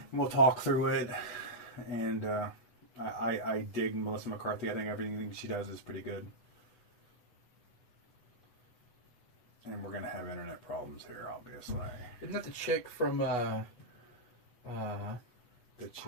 we'll talk through it. And I dig Melissa McCarthy. I think everything she does is pretty good. And we're going to have internet problems here, obviously. Isn't that the chick from... The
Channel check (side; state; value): right; late; 8.1 ms